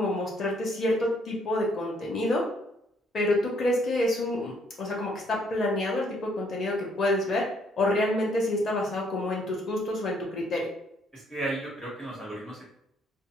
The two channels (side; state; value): both; normal; correlation 0.68